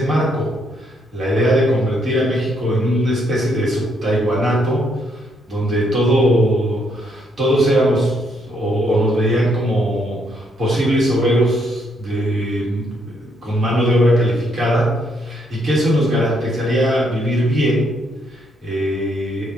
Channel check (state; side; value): normal; both; correlation 0.73